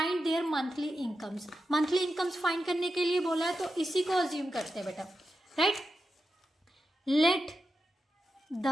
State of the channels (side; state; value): both; normal; correlation 0.89